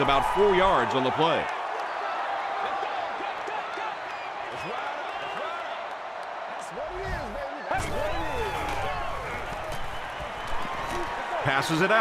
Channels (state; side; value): identical; both; correlation 1.00